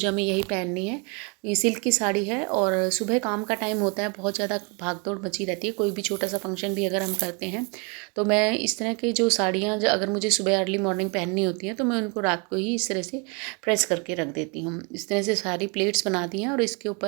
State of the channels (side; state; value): left; quieter; 32.9 dB